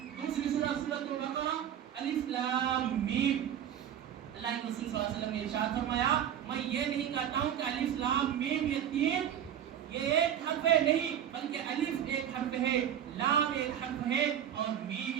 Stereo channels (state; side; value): quieter; left; 9.9 dB